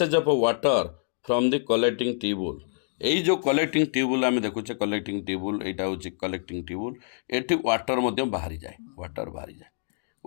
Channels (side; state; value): right; silent; digital silence